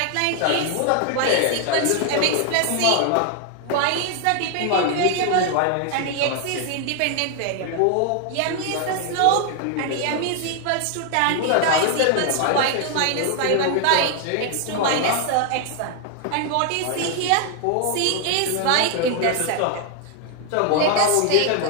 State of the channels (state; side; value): different; both; correlation 0.00